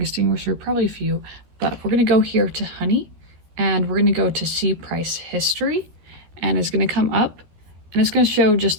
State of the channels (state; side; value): late; left; 13 ms